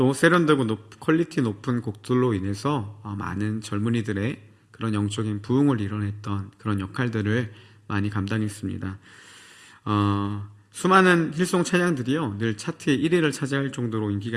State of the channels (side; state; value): both; identical; correlation 1.00